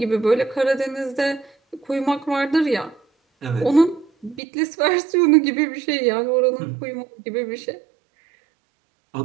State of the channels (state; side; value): drops out; left; at 4.4 s